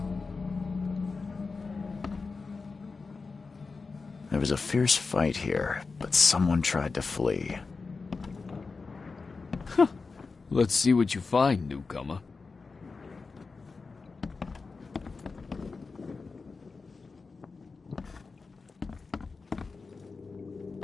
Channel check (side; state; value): right; quieter; 4.4 dB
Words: There was a fierce fight here, but someone tried to flee. Let's see what you find, newcomer.